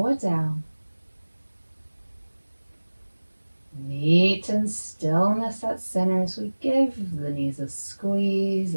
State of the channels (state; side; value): inverted; both; correlation -1.00